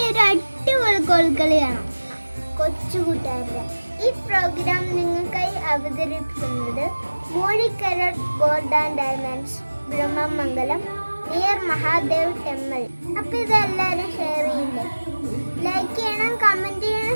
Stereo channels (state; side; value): inverted; both; correlation -1.00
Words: ഒരു അടിപൊളി കോൽക്കളിയാണ് കൊച്ചുകൂട്ടുകാരുടെ. ഈ പ്രോഗ്രാം നിങ്ങൾക്കായി അവതരിപ്പിക്കുന്നത് Moozhikkara gold and diamonds, Brahmamangalam, near Mahadev temple. അപ്പൊ ഇതെല്ലാവരും ഷെയർ ചെയ്യില്ലേ, ലൈക്ക് ചെയ്യണം, കമന്റ്